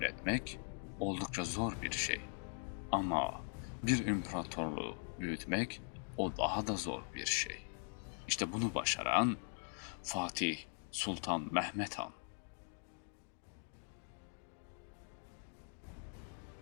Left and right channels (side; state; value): right; silent; 50 dB below the other